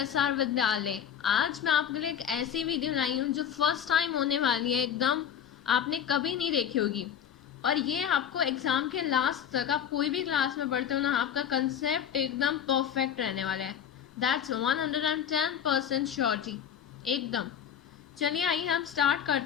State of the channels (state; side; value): quieter; right; 8.8 dB